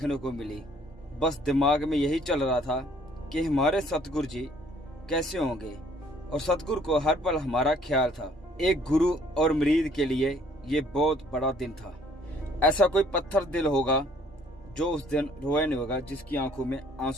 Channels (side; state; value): both; normal; correlation 0.60